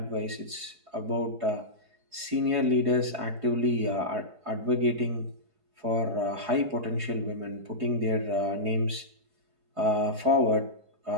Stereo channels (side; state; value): left; late; 4.7 ms